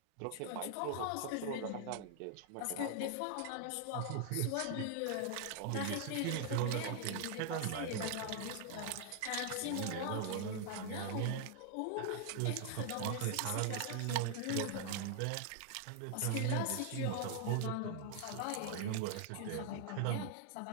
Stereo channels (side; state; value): both; different; correlation 0.00